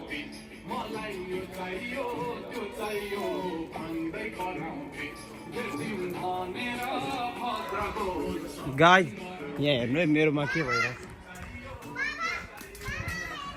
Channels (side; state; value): both; identical; correlation 1.00